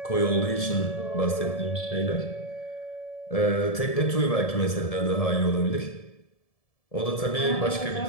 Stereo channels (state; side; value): late; right; 1.7 ms